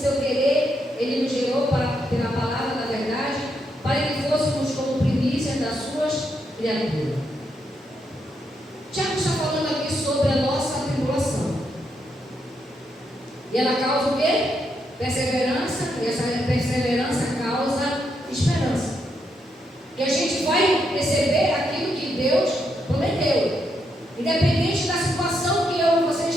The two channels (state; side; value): normal; both; correlation 0.80